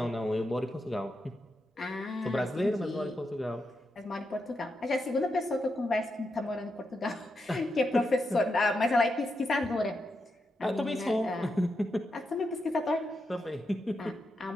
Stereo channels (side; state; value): both; normal; correlation 0.85